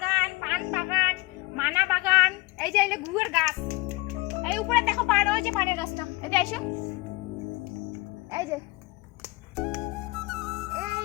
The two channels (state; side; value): quieter; right; 22.9 dB